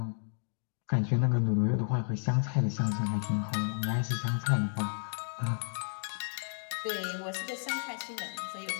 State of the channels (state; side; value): silent; right; digital silence